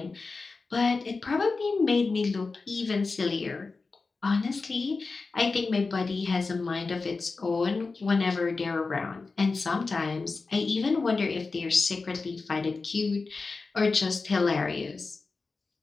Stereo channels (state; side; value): quieter; right; 4.1 dB